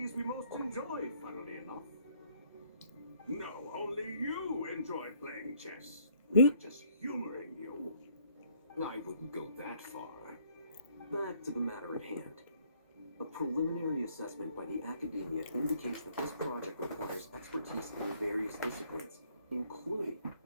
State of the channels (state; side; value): inverted; both; correlation -0.65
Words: we most enjoy, funnily enough. No, only you enjoy playing chess. We're just humoring you. I wouldn't go that far. Back to the matter at hand. A preliminary assessment by the Academia indicates that this project requires expertise in various disciplines, including